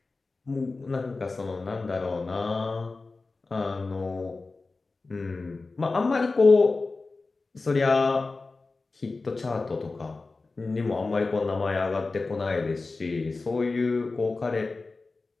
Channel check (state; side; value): quieter; right; 3.7 dB